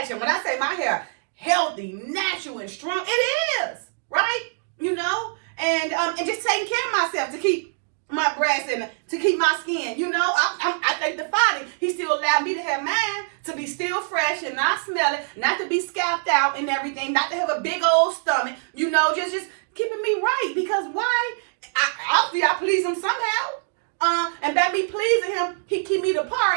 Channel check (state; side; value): silent; left; digital silence